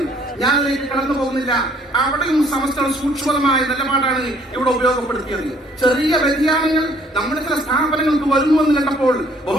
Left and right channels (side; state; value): both; normal; correlation 0.61